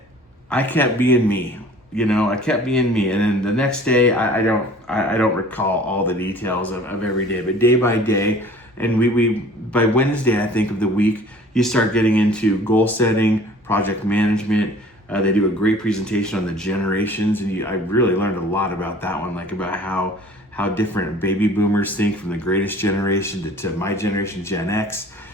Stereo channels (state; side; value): normal; both; correlation 0.48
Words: I kept being me. You know, I kept being me. And then the next day, I don't recall all the details of every day, but day by day, and we by Wednesday, I think, of the week, you start getting into goal setting, project management. They do a great presentation on the generations, and I really learned a lot about that one, like about how different baby boomers think from the greatest generation to my generation, Gen X,